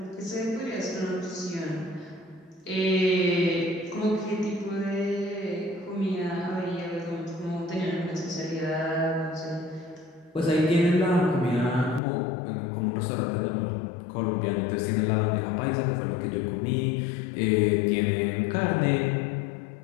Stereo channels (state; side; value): drops out; right; at 12.0 s